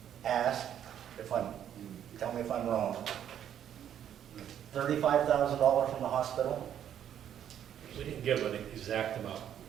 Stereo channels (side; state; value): left; quieter; 9.9 dB